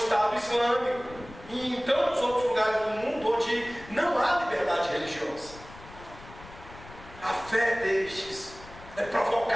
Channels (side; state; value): left; noise; rumble, 18 dB below the sound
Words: Islâmico e em tantos outros lugares do mundo onde não há liberdade religiosa. A fé destes é